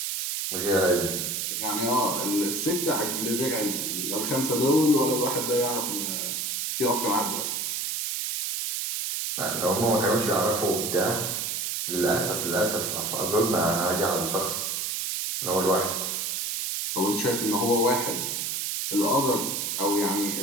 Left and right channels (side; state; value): right; noise; hiss, 2 dB below the sound